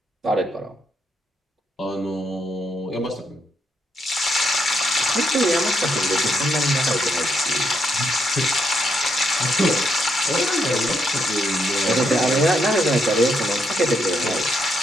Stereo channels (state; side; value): normal; both; correlation 0.78